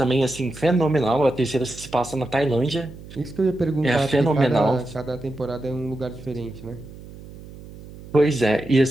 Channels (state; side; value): noise; right; hum, 16 dB below the sound